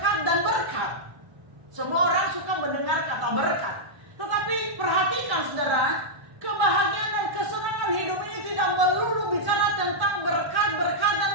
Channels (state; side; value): late; left; 1.1 ms